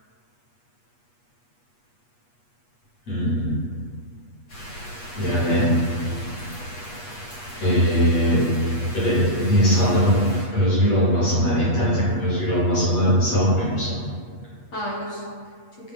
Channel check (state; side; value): late; right; 8.3 ms